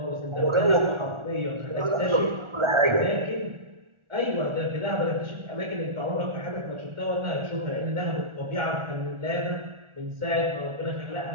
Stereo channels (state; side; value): late; left; 1.4 ms